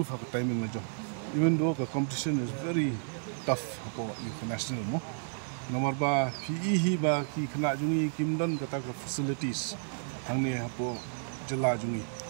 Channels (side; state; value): left; silent; digital silence